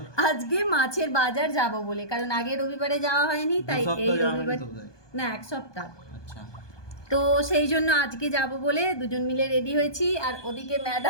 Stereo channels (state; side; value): late; right; 1.2 ms